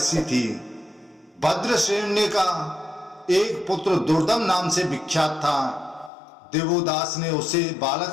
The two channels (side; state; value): right; drops out; at 6.1 s